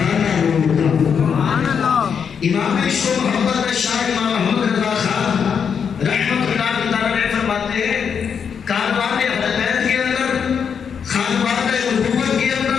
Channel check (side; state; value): right; quieter; 6.9 dB